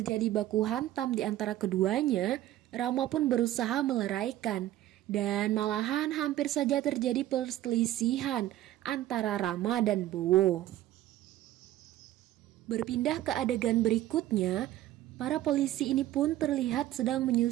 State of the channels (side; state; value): left; quieter; 14.1 dB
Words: baku hantam di antara keduanya, Rama pun berusaha meleraikan. Dan malahan hampir saja terjadi perselisihan antara Rama dan Bowo. Berpindah ke adegan berikutnya, para polisi ini pun terlihat sedang